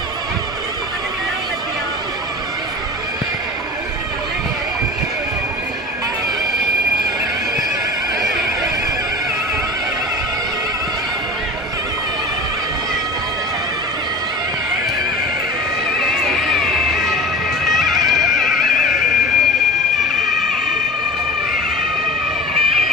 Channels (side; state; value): both; normal; correlation 0.34